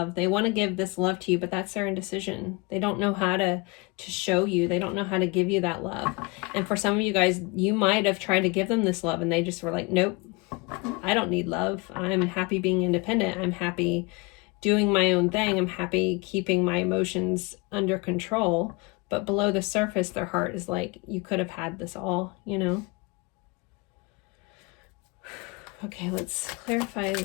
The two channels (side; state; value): right; quieter; 27.2 dB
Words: They want to give this love to you, but that's their indecision. They don't know how to show you. They don't know how to give you that love. And for some of you guys, you might have tried to give them this love and they just were like, nope, I don't need love. I'm happy being independent. I'm happy doing my own thing. I'm happy keeping my emotions under control. But below the surface, their heart is like, you could have had this all, you know? Okay, let's clarify